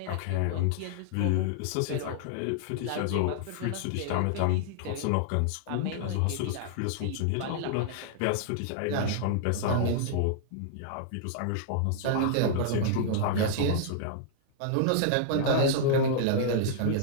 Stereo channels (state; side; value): different; both; correlation -0.01